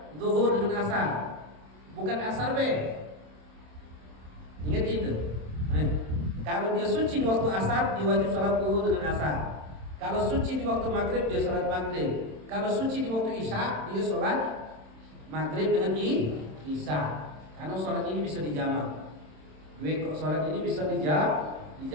zuhur dengan asar. Bukan asar B. Ingat itu. Kalau dia suci di waktu asar, dia wajib sholat zuhur dengan asar. Kalau suci di waktu maghrib, dia sholat maghrib. Kalau suci di waktu isya, dia sholat maghrib dengan isya. Karena sholat ini bisa dijamak. Kok sholat ini bisa dijamak.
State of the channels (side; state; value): left; late; 27 ms